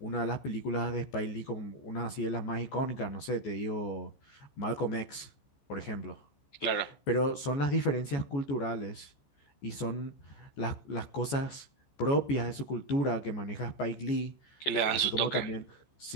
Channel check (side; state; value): right; late; 14 ms